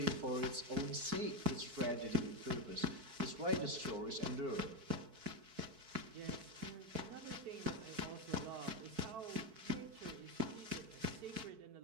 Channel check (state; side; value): late; left; 4.6 ms